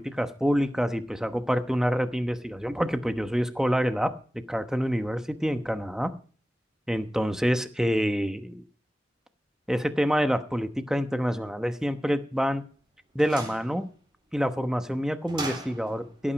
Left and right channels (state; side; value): normal; both; correlation 0.95